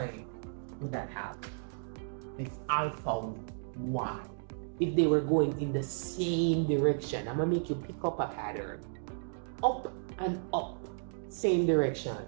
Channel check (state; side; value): silent; left; digital silence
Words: would that have? This alpha Y. If they were going in the same direction, I'm going to make you pick up a pattern. Up and up, same direction.